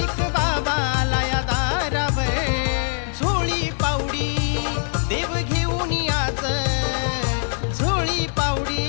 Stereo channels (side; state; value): right; silent; digital silence